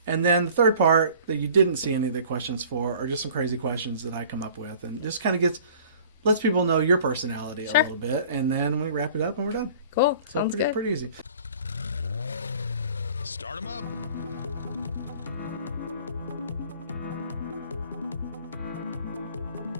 And then the third part that you didn't see any of the questions for are just some crazy questions that I come up with, and just kind of lets people know your personality a little bit, and then we wrap it up and we're done. Cool. So Sounds good. Pretty easy. Start them up.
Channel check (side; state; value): both; inverted; correlation -0.49